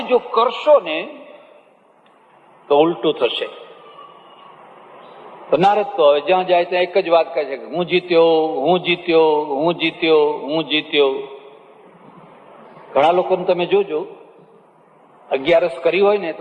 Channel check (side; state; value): both; identical; correlation 1.00